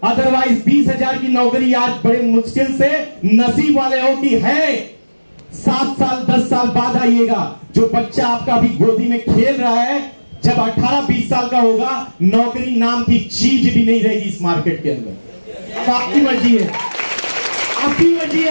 अदरवाइज 20,000 की नौकरी आज बड़े मुश्किल से नसीब वाले हो कि है। 7 साल 10 साल बाद आइएगा, जो बच्चा आपका अभी गोदी में खेल रहा है, जब 18-20 साल का होगा, नौकरी नाम की चीज भी नहीं रहेगी इस मार्केट के अंदर। अब आपकी मर्जी है, आपकी मर्जी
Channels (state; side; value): inverted; both; correlation -1.00